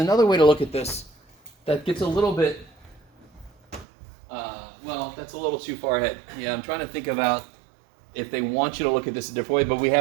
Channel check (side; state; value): left; drops out; at 3.9 s